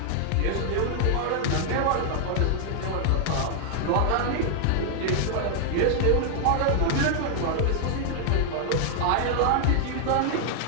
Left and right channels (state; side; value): different; both; correlation 0.00